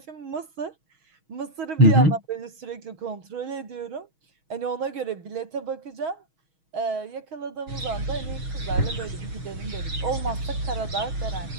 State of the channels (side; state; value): left; late; 6.3 ms